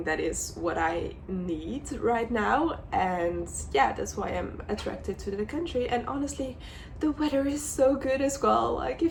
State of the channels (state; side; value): identical; both; correlation 1.00